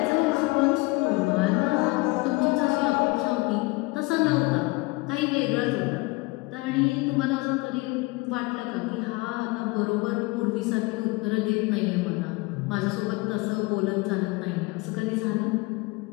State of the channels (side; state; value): right; quieter; 24.3 dB